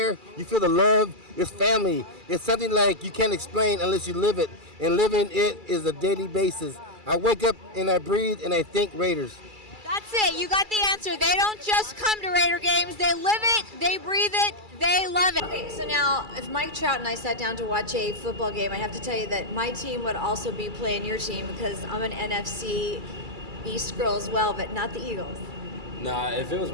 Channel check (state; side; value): late; left; 2.3 ms